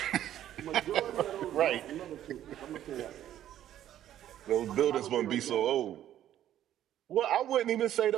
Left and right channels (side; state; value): left; quieter; 11.8 dB